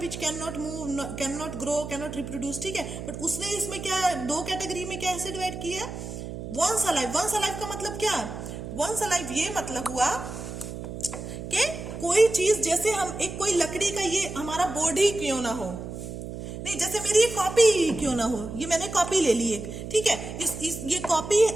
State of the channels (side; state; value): right; noise; hum, 8 dB below the sound